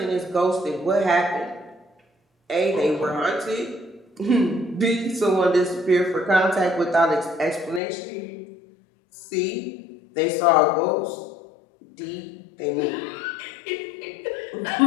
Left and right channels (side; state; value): right; drops out; at 7.8 s